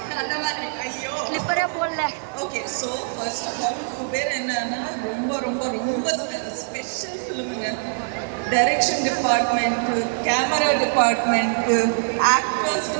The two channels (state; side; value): silent; left; digital silence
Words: அந்த மாதிரி. ஐயோ. ஸ்லிப்பரே போடல. Okay, so first of all Kubera என்னன்னா ரொம்ப ரொம்ப ரொம்ப ஸ்பெஷல் ஃபிலிமுங்க. Direction department, camera department, actors